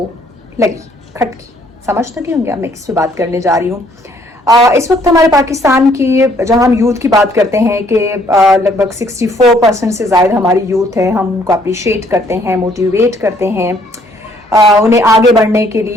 लगी, खटकी, समझ तक होंगे। मैं किस पे बात करने जा रही हूँ। इस वक्त हमारे पाकिस्तान की, जहां हम यूथ की बात करते हैं कि लगभग 64% से ज़्यादा हमारी यूथ है, हम उनको अप्रिशिएट करते हैं, मोटिवेट करते हैं, उन्हें आगे बढ़ने के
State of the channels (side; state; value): both; normal; correlation 0.64